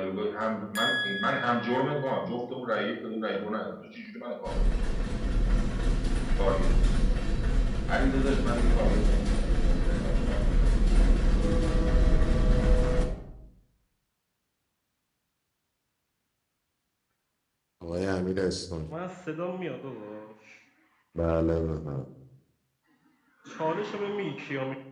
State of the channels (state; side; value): identical; both; correlation 1.00